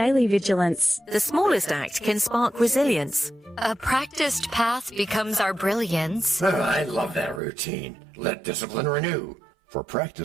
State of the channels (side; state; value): left; drops out; at 7.4 s